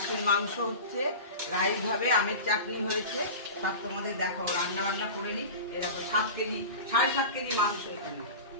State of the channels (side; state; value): both; inverted; correlation -0.31